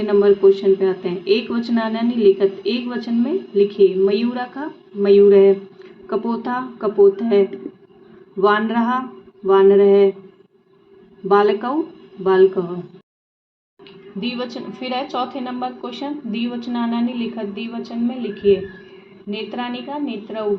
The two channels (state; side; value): identical; both; correlation 1.00